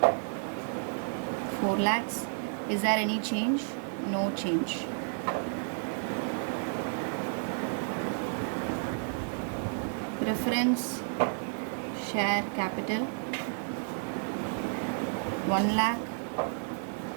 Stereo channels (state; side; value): silent; left; 57 dB below the other